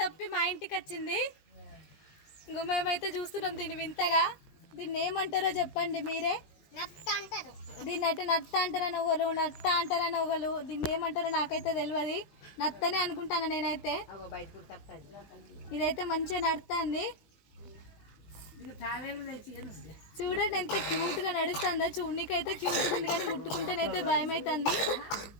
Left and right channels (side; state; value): right; late; 20 ms